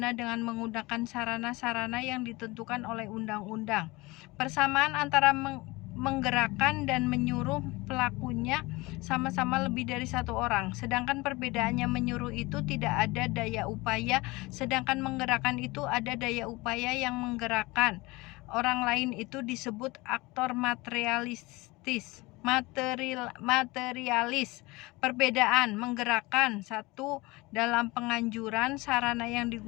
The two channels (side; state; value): right; quieter; 22.6 dB